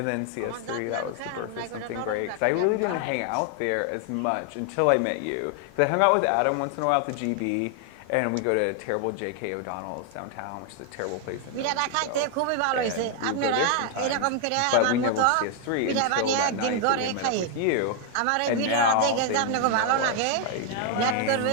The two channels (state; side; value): different; both; correlation 0.00